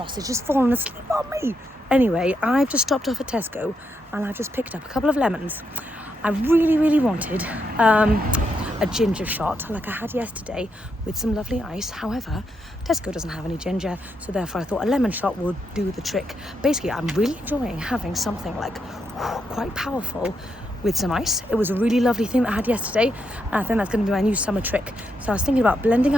has fallen asleep on me. Anyway, I've just stopped off at Tesco and I've just picked up a couple of lemons. I really, really wanted a ginger shot like I had yesterday with some lovely ice. However, Tesco doesn't have any ginger, so therefore I thought a lemon shot would do the trick. Basically, I'm really enjoying having something like quite powerful with some ice. It was a really lovely thing that I had yesterday, and I think that's going to be my new summer trick. So I was thinking about blending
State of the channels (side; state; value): both; normal; correlation 0.81